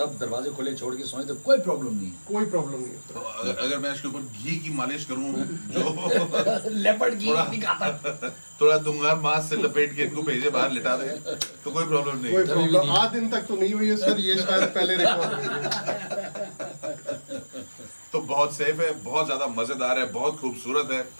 दरवाजे खुले छोड़ के सोए तो कोई प्रॉब्लम नहीं कोई प्रॉब्लम नहीं तो होता। अगर मैं इसके ऊपर घी की मालिश करूं जो है। लेपर्ड की थोड़ा- नहीं खाता। थोड़ा दूंगा मांस से लपेट के इनको भेजे बाहर लिटा दे तो कोई प्रॉब्लम कोई नहीं। प्रॉब्लम आज दिन तक तो नहीं हुई है सर, ये शायद पहले रिकॉर्ड हुई है। तो बहुत सेफ है, बहुत ज्यादा मजेदार है, बहुत खूबसूरत है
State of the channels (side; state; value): both; inverted; correlation -1.00